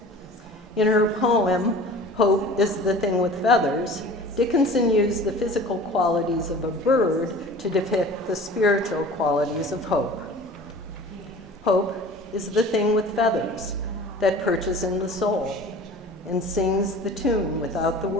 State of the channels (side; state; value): both; normal; correlation 0.42